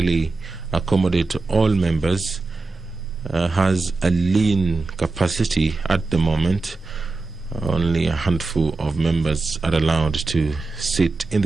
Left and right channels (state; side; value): quieter; left; 3.6 dB